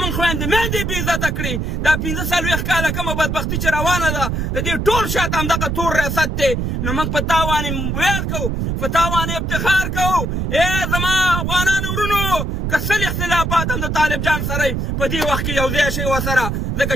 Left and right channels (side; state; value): right; noise; rumble, 1 dB below the sound